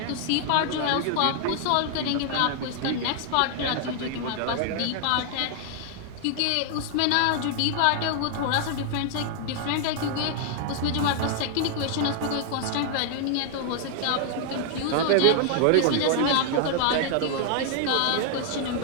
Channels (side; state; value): both; different; correlation 0.00